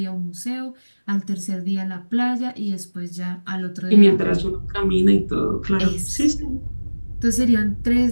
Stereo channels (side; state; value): both; inverted; correlation -1.00